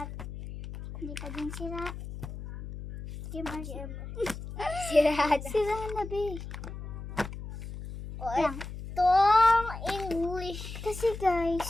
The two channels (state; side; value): noise; left; hum, 10 dB below the sound